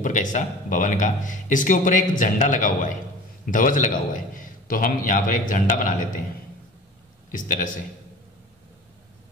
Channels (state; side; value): normal; both; correlation 0.40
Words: का हिस्सा भवन का, इसके ऊपर एक झंडा लगा हुआ है, ध्वज लगा हुआ है। तो हम यहां पर एक झंडा बना लेते हैं इस तरह से,